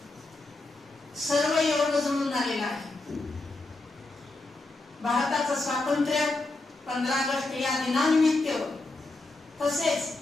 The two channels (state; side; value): quieter; right; 3.1 dB